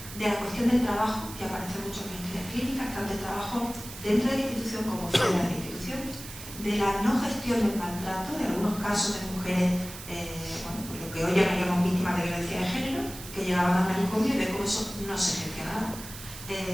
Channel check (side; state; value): right; noise; hiss, 13 dB below the sound